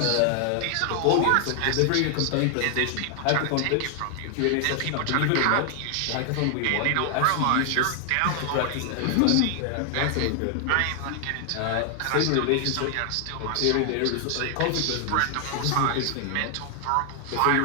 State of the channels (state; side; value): different; both; correlation 0.00